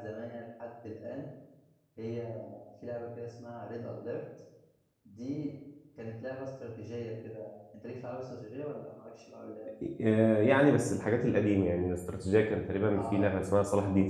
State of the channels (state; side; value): identical; both; correlation 1.00